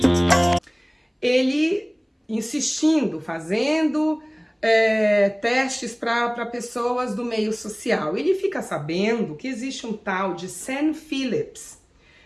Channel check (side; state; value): both; identical; correlation 1.00